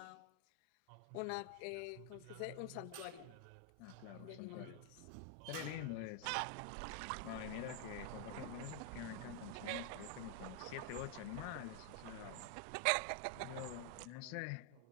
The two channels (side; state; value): both; different; correlation 0.00